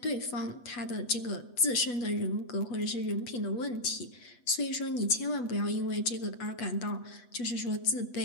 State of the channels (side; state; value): right; late; 8.2 ms